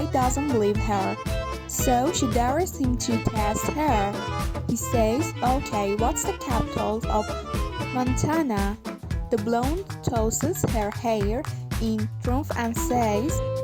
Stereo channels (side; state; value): both; identical; correlation 1.00